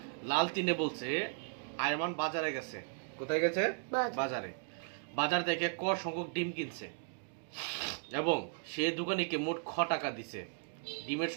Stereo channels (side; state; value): left; silent; 54 dB below the other